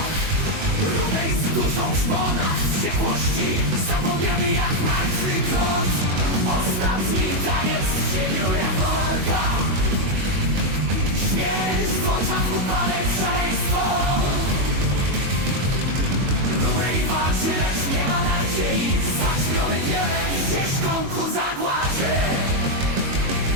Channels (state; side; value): late; left; 22 ms